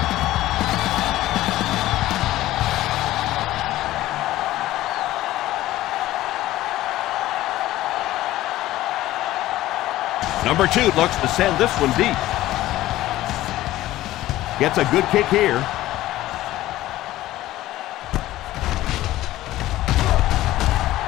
Number 2 looks to send this one deep. Gets a good kick here.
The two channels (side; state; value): right; quieter; 15.5 dB